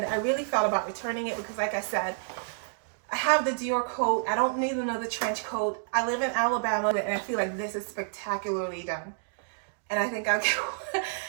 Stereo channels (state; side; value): silent; left; digital silence